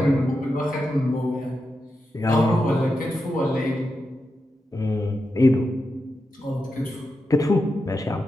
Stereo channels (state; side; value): normal; both; correlation 0.88